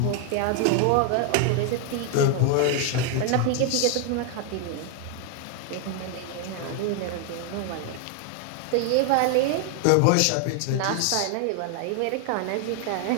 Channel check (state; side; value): different; both; correlation 0.00